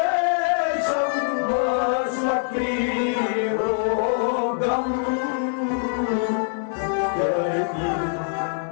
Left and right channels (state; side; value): silent; right; digital silence